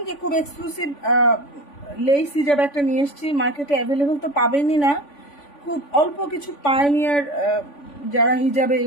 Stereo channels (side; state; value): right; late; 3.5 ms